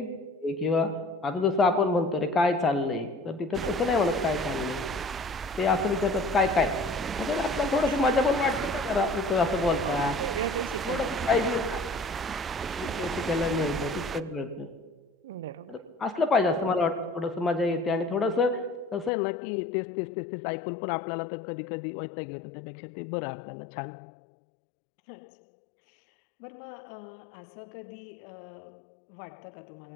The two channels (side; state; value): right; drops out; at 19.1 s